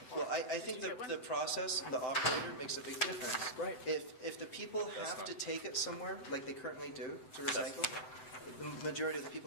Well, I think the process, the operator makes a big difference. Right. If the people have to take it somewhere, like they currently do, to recycle, the majority of the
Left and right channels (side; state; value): right; late; 7.9 ms